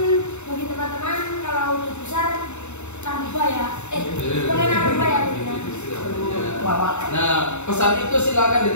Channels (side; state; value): right; late; 0.82 ms